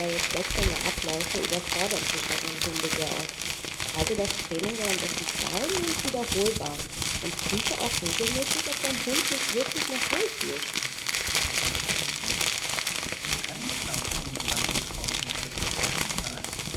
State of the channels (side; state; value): both; identical; correlation 1.00